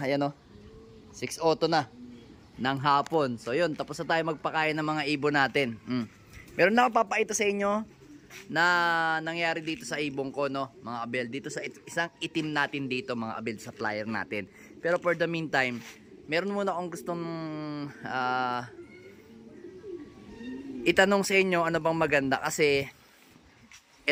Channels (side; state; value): both; identical; correlation 1.00